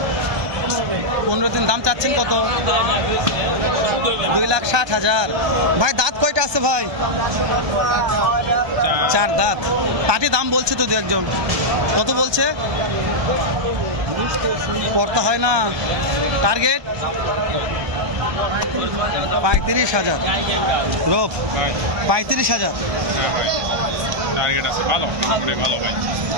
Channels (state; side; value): late; left; 1.2 ms